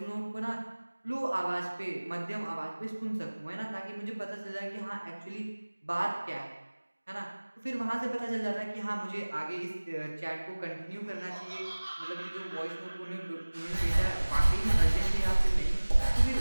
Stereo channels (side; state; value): both; inverted; correlation -1.00